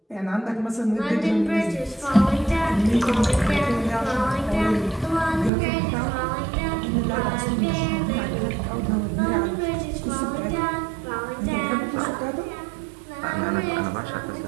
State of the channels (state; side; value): drops out; left; at 5.5 s